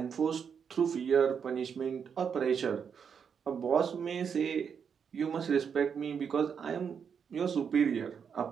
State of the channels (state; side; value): quieter; left; 6.9 dB